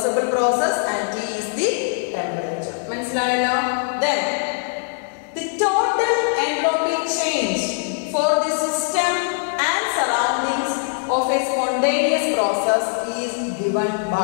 process and T is the temperature. മനസ്സിലായല്ലോ? Then the total entropy change for the system and surroundings of a spontaneous process is given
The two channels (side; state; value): right; silent; 63 dB below the other